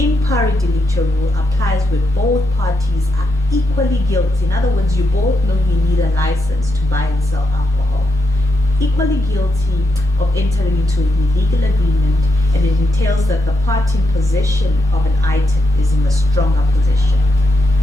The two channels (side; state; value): both; normal; correlation 0.83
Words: pari delicta rule applies where both parties are equally guilty. In other words, you both know you need a license to buy and sell alcohol. Equally guilty of entering into an illegal agreement, and it entails that the party in possession of an item is in the stronger position.